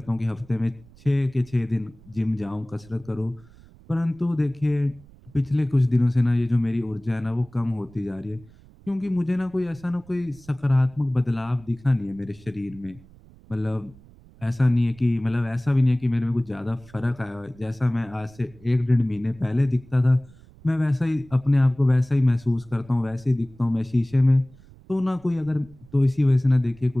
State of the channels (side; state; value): right; noise; rumble, 24 dB below the sound